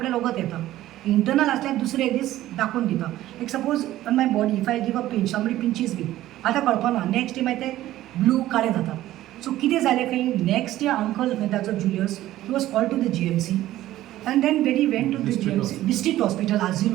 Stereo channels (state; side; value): quieter; left; 14.6 dB